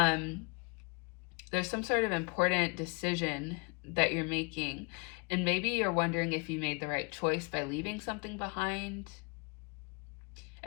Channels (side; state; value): right; quieter; 31.8 dB